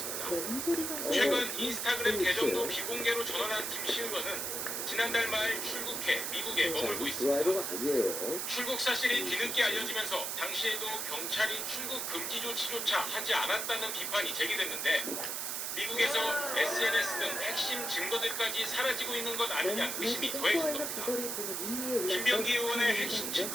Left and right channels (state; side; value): noise; right; hiss, 2 dB below the sound